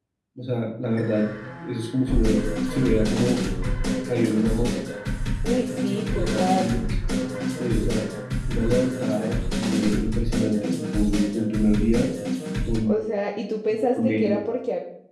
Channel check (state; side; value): identical; both; correlation 1.00